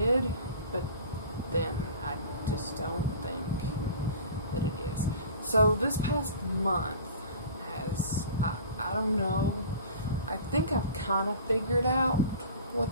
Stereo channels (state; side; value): inverted; both; correlation -0.40